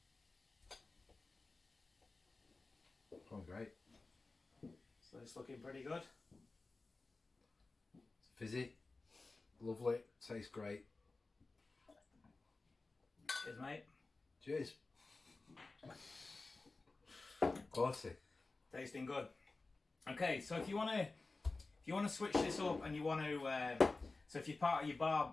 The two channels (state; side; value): quieter; right; 3.5 dB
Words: Oh, great. So it's looking pretty good. Fizzy, lovely, tastes great. Cheers, mate. Cheers. Quality. Tasting good. Okay, so if you want to switch this up and you want to, so if you're part of your